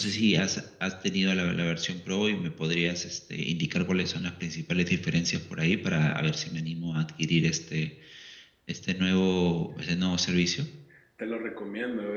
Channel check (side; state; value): both; identical; correlation 1.00